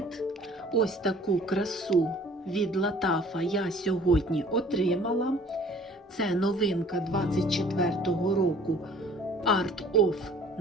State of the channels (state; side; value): normal; both; correlation 0.52